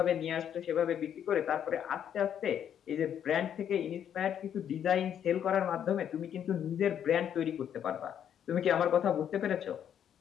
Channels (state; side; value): quieter; right; 9.3 dB